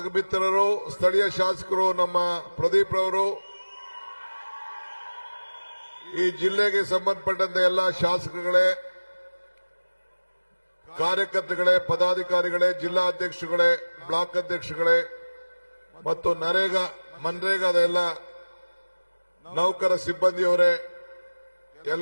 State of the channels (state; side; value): inverted; both; correlation -1.00